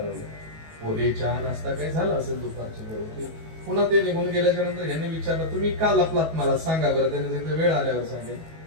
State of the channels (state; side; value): late; left; 19 ms